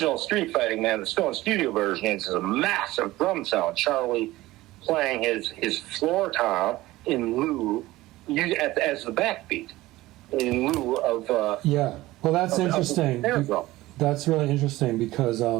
Street Fighting Man, the Stone Studio version, is a massive drum sound. Charlie playing his floor tom in lieu, as the backbeat, in lieu of... well, that's interesting. That's really interesting because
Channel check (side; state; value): left; quieter; 17.8 dB